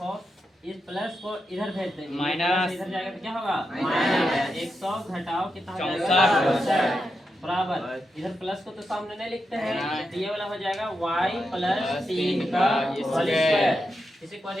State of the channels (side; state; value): both; normal; correlation 0.87